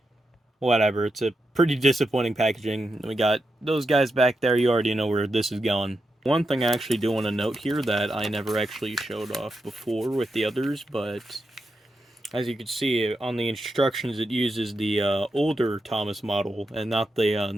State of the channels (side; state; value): both; normal; correlation 0.86